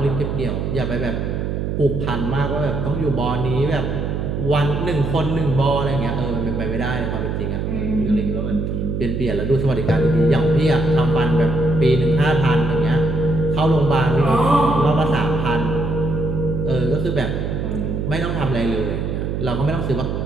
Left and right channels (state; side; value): noise; right; hum, 2 dB below the sound